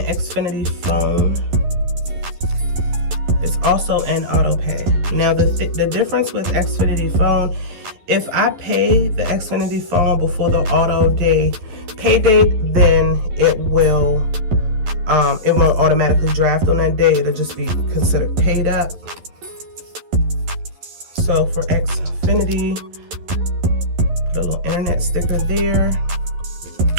Xfinity phone is also an auto pay. Now the difference with Xfinity phone, if I pay the Xfinity phone before the auto pay date, then it won't automatically draft on that day. It'll just be considered paid up. So for Xfinity, put a little internet sticker there.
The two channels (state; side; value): late; left; 11 ms